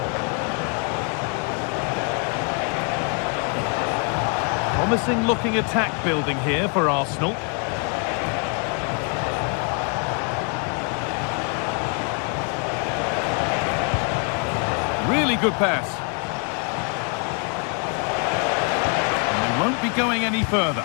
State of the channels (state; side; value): quieter; right; 38.3 dB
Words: Promising looking attack building here for Arsenal. Really good pass. And they won't be going any further.